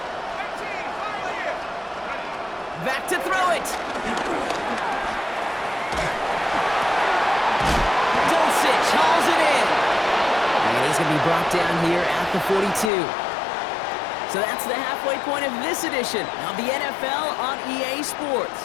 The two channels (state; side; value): drops out; right; at 12.9 s